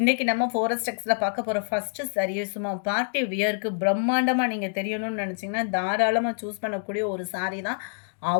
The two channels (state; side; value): silent; right; digital silence